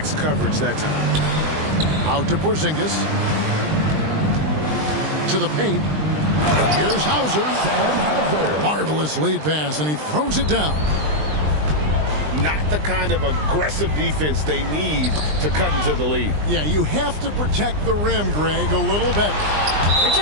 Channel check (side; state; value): left; late; 20 ms